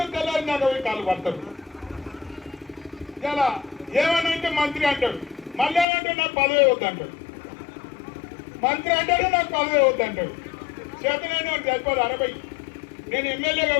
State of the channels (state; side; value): drops out; right; at 5.9 s